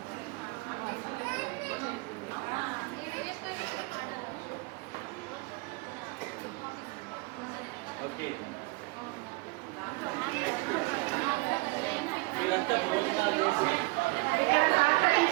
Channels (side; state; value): left; quieter; 25.6 dB